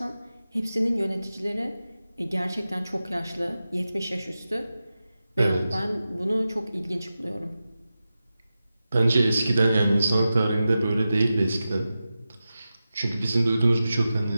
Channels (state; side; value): inverted; both; correlation -0.93